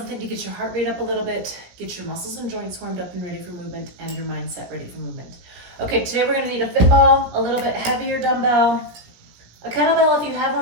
to get your heart rate up a little bit, get your muscles and joints warmed up and ready for movement, and your mindset ready for movement. Okay, today we're going to need a fit ball, a little bit heavier dumbbell, a kettlebell if you have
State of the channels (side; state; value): left; late; 17 ms